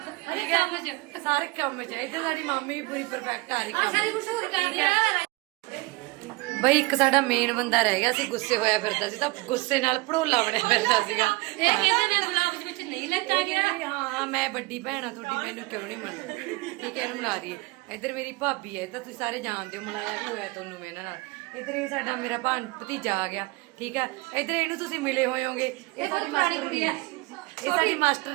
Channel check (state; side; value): quieter; left; 24.1 dB